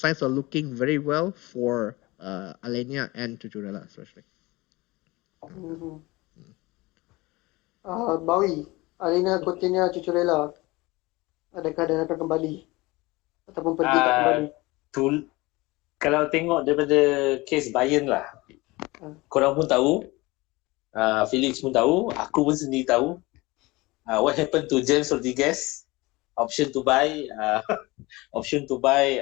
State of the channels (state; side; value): quieter; right; 22.1 dB